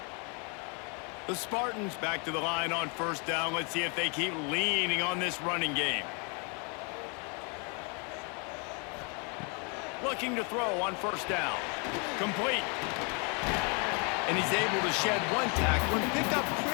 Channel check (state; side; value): quieter; right; 35.2 dB